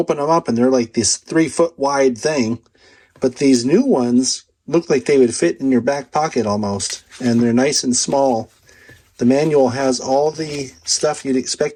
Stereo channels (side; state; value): both; identical; correlation 1.00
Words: them up and they're like this 3-foot wide thing. But these new ones look like they would fit in your back pocket almost, and they're nice and small. The manual has all the stuff you'd